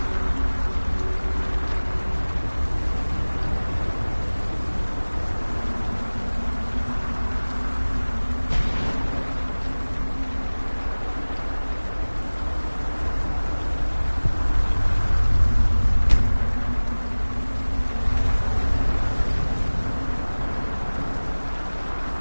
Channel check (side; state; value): both; inverted; correlation -1.00